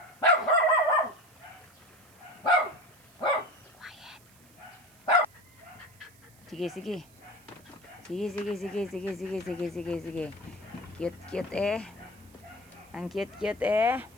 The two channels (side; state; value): right; noise; hiss, 27 dB below the sound